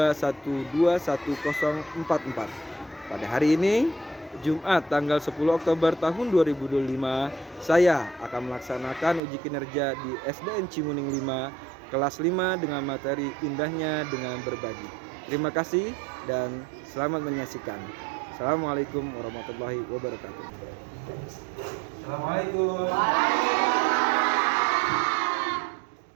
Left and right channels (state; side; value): drops out; left; at 9.2 s